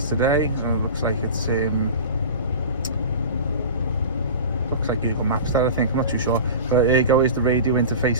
today. So it looks like it's looks like Google Maps that, I think. I'm not too sure, but here you go. Is the radio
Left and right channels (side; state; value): both; inverted; correlation -0.33